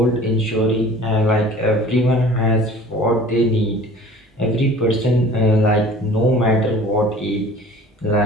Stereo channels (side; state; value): both; normal; correlation 0.46